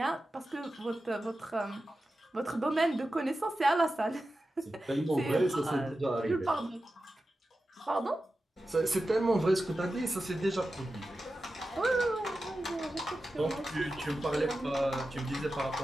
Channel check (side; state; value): both; normal; correlation 0.93